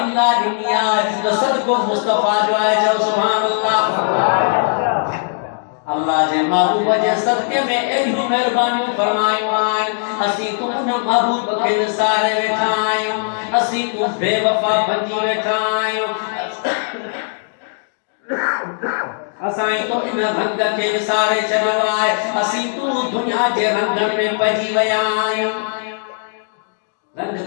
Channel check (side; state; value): right; silent; digital silence